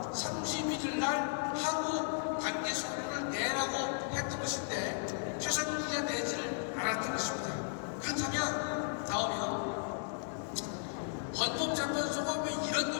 31일 날 하루 단계 서류를 내라고 했던 것인데 최상목이가 내지를 않았던 것입니다. 그렇다면 나오면 헌법재판소가 왜 이런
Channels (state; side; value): silent; right; digital silence